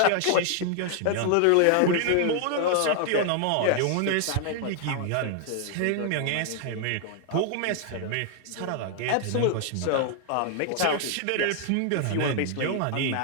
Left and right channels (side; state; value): both; different; correlation 0.00